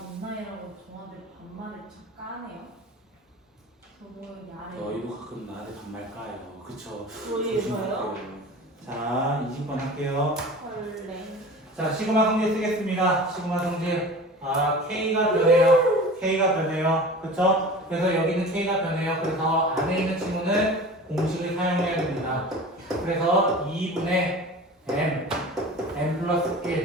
누나이라고 저한테 반말을 참 까네요. 저거 야래. 저희도 가끔 나한테 반말 까요. 그쵸? 저희요? 자, 20번 할게요. 헐래. 자, 시그마 성질 쓰겠습니다. 시그마 성질. K가 변해요. K가 변해요. 그쵸? 그래서 여기는 K가 변해요. 그래서 안에 있는 친구는 공식을 사용해야 됩니다. 그래서 2분의 M 플러스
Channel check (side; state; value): both; normal; correlation 0.37